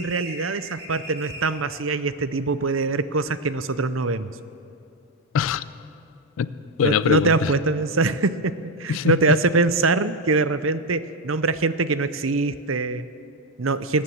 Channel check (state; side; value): normal; both; correlation 0.07